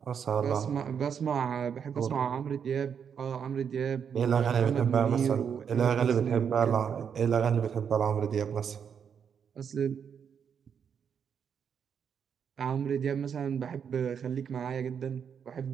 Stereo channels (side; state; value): left; quieter; 7.4 dB